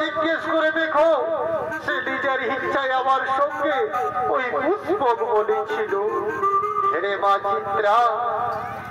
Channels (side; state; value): both; identical; correlation 1.00